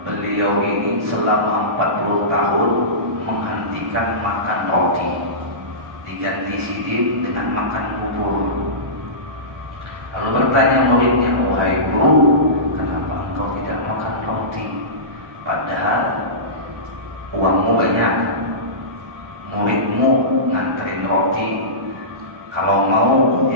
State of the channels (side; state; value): left; late; 1.6 ms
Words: beliau ini selama 40 tahun menghentikan makan roti, diganti sidin dengan makan bubur. Lalu bertanya muridnya, wahai guru, kenapa engkau tidak makan roti? Padahal uangmu banyak, muridmu nganterin roti. Kalau mau